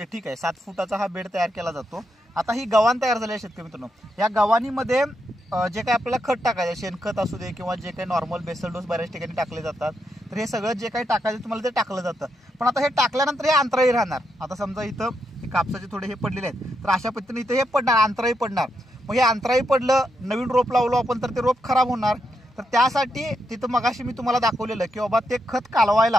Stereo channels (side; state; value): both; normal; correlation 0.82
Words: ठीक आहे. 7 फुटाचा हा बेड तयार केला जातो. आता ही गव्हाण तयार झाली आहे शेतकरी मित्रांनो. या गव्हाणीमध्ये जे काही आपल्याला खत टाकायचं, शेणखत असू दे किंवा जे काही नॉर्मल बेसल डोस बऱ्याच ठिकाणी टाकले जातात, तर हे सगळं जे काही टाकायचं तुम्हाला ते टाकलं जातं. पण आता हे टाकल्यानंतर हे अंतराळी राहणार. आता समजा इथं हे कापसाचे थोडे हे पडलेले आहेत, तर अशा पद्धतीने इथं हे पडणार, अंतराळी पडणार. मग हे अंतराळी पडलं, नवीन रोप लावलो आपण तर ते रोप खराब होणार. तर त्यासाठी तिथं मगाशी मी तुम्हाला दाखवलेलं की बाबा ते खत